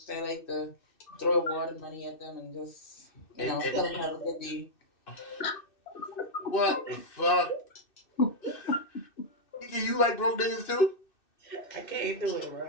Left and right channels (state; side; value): late; right; 2.6 ms